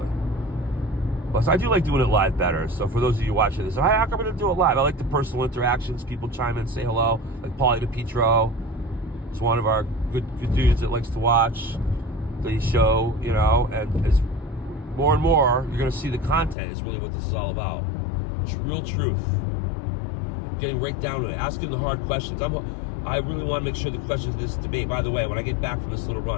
But so I do like doing it live better. So for those of you watching this, how come I'm going to do it live? I like the personal interactions. People chime in, say hello. Like Paulie DePietro. It's one of our good dudes that likes to watch the show, and as more and more, you're going to see the content is really what this is all about. Real truth. Getting right down to it, asking the hard questions. I'm I really want to make sure the questions of this debate, by the way, when I get back from this little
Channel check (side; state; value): right; drops out; at 16.6 s